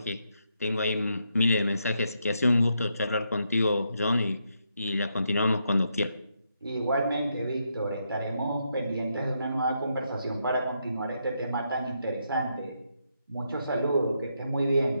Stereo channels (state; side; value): inverted; both; correlation -0.80